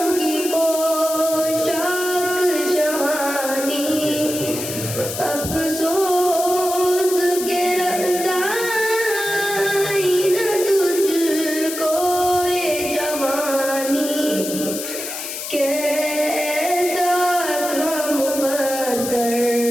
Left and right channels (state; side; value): noise; left; hiss, 7 dB below the sound